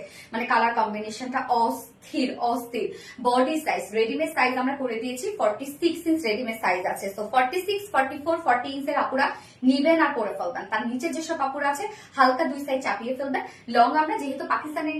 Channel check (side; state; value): both; identical; correlation 1.00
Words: মানে কালার কম্বিনেশনটা অস্থির অস্থির। বডি সাইজ, রেডিমেড সাইজ আমরা করে দিয়েছি 46 ইঞ্চ রেডিমেড সাইজ আছে। সো 46, 44, 40 ইঞ্চের আপুরা নিবেন আর পরে ফেলবেন। তার নিচে যেসব আপুরা আছে হালকা 2 সাইজ চাপিয়ে ফেলবেন। লং আমরা যেহেতু পাকিস্তানের